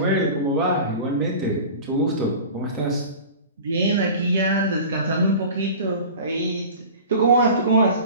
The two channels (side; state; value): both; inverted; correlation -0.38